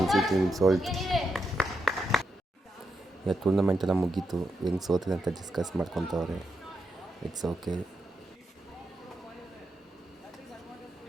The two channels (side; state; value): both; normal; correlation 0.84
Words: ಟೀಮ್ ಸೋಲ್ತು. ಈಗ ಟೂರ್ನಮೆಂಟ್ ಎಲ್ಲ ಮುಗೀತು, ಹೆಂಗೆ ಸೋತಿದೆ ಅಂತ ಡಿಸ್ಕಸ್ ಮಾಡ್ಕೊತವ್ರೆ. It's okay.